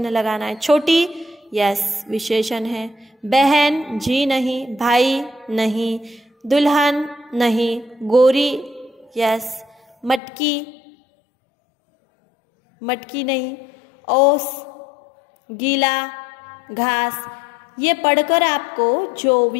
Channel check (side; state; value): right; drops out; at 10.2 s